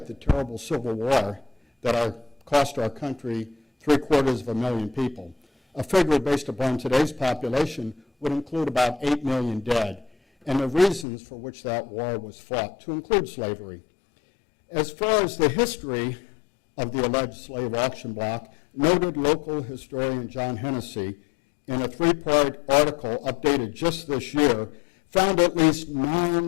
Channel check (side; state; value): right; drops out; at 11.1 s